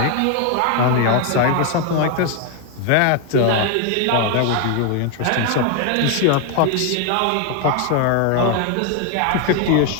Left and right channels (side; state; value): both; different; correlation 0.01